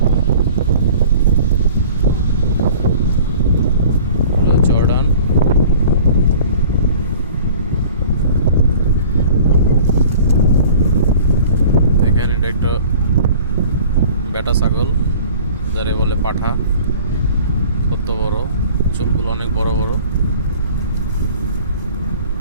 জর্ডান দেখেন, এটা একটা বেটা ছাগল, যারে বলে পাঠা। কত বড়, চুলগুলো অনেক বড় বড়।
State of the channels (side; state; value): both; inverted; correlation -0.46